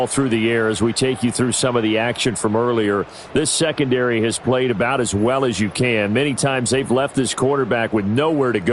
through the air as we take you through some of the action from earlier. This secondary has played about as well as you can. Many times they've left this quarterback with nowhere to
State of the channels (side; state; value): both; identical; correlation 1.00